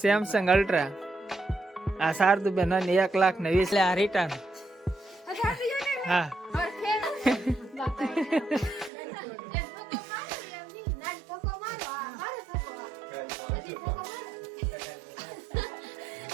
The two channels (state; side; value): drops out; left; at 8.9 s